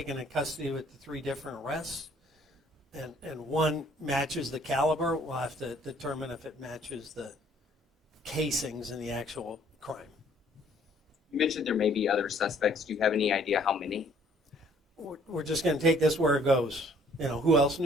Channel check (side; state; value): both; normal; correlation 0.60